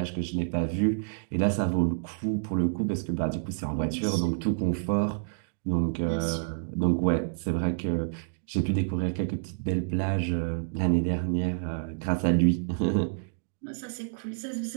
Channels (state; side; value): silent; left; digital silence